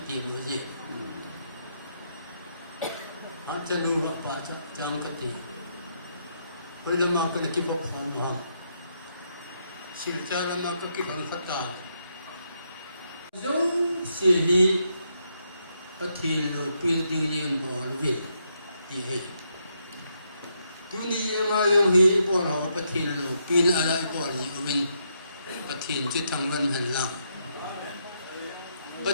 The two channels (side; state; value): both; inverted; correlation -0.78